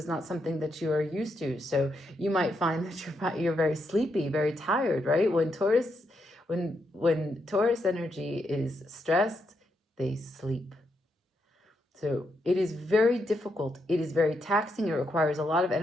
not something that you are used to. So you might find that you're very sleepy, very tired, right? When Taurus energy is stressed, they sleep. So it is very difficult. It is very taxing. It requires a lot of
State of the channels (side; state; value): both; normal; correlation 0.81